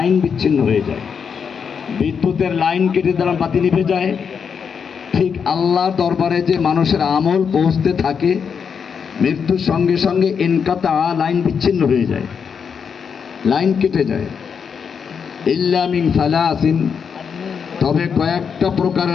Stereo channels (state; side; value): quieter; right; 6.6 dB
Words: বিচ্ছিন্ন হয়ে যায়। বিদ্যুতের লাইন কেটে দিলাম, বাতি নিভে যায়। ঠিক আল্লাহর দরবারে যে মানুষের আমল পৌঁছতে থাকে, মৃত্যুর সঙ্গে সঙ্গে ইনকাতা, লাইন বিচ্ছিন্ন হয়ে যায়, লাইন কেটে যায়। ইল্লা মিন সালাসিন, তবে কয়েকটা